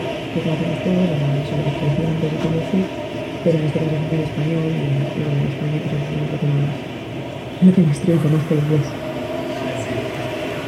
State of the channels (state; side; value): identical; both; correlation 1.00